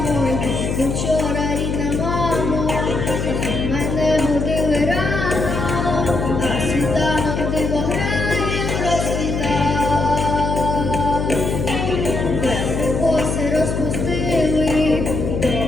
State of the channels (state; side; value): noise; left; hum, 2 dB below the sound